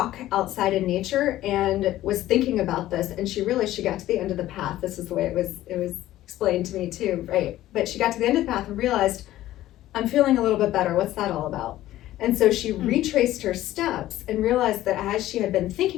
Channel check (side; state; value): right; quieter; 14.5 dB